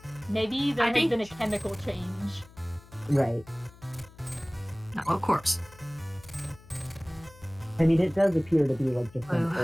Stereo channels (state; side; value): noise; left; hum, 23 dB below the sound